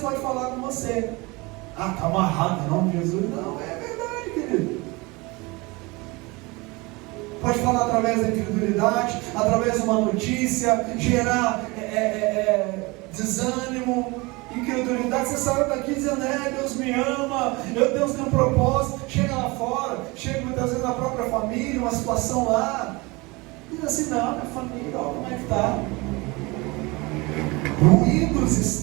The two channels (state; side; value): quieter; left; 24.7 dB